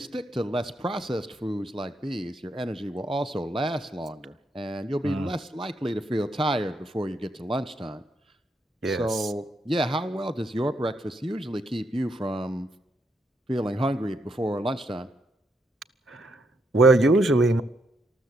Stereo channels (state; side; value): normal; both; correlation 0.77